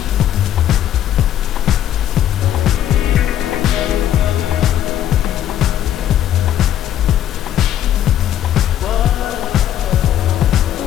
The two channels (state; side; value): quieter; right; 11.3 dB